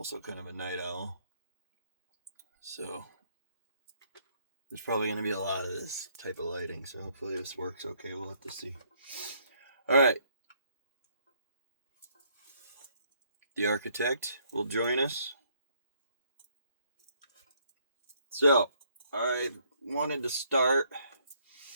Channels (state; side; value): inverted; both; correlation -0.68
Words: kind of a night owl. So there's probably going to be a lot of this type of lighting, so hopefully this works okay. We'll have to see. Alright. The architect will join us. So, I wanted to start